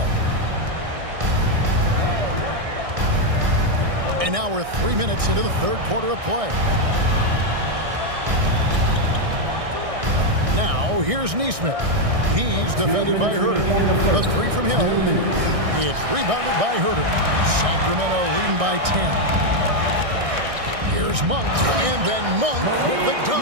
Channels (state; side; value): late; left; 1.6 ms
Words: And now we're 3 minutes into the third quarter of play. Now here's Neesmith. He's defended by Huerter. The 3 from Hill. It's rebounded by Huerter. Sacramento leading by 10. Here's Monk, and then Monk with the